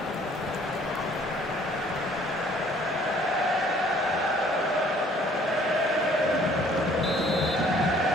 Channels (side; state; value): both; normal; correlation 0.58